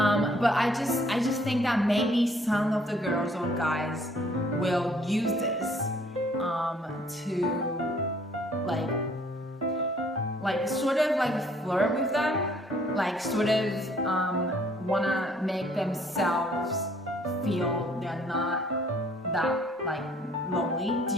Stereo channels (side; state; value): both; normal; correlation 0.61